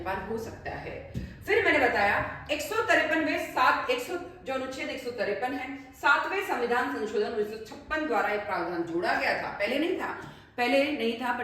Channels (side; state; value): both; identical; correlation 1.00